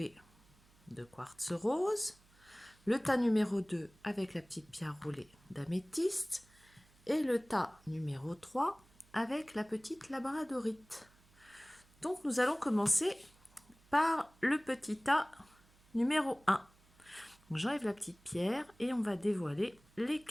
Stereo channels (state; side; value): noise; right; hum, 29 dB below the sound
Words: de quartz rose. Le tas numéro 2 avec la petite pierre roulée d'améthyste. Et le tas numéro 3 avec la petite labradorite. Donc nous allons commencer par le petit tas numéro 1. J'enlève la petite pierre et on va dévoiler les